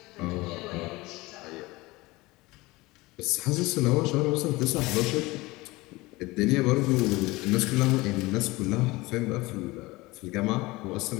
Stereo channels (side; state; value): right; quieter; 21.4 dB